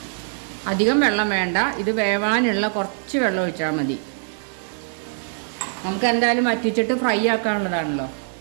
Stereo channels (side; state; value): left; silent; 63 dB below the other